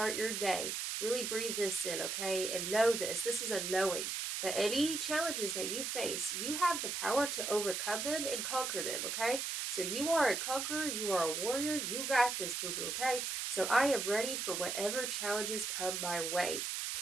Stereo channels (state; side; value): noise; right; hiss, 2 dB below the sound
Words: your day, really breathe this in, okay? And know this. This is a knowing that any challenges that you face, you have the power to overcome them and conquer them, okay? So you are a conqueror, you are a warrior, you got this, boo-boo, okay? So I am ready for whatever challenges come my way,